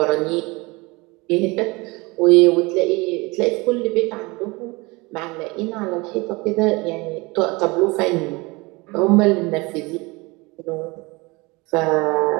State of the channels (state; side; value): quieter; left; 24.8 dB